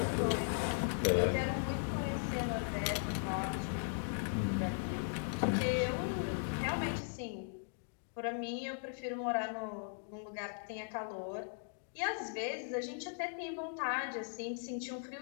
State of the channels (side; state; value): right; silent; digital silence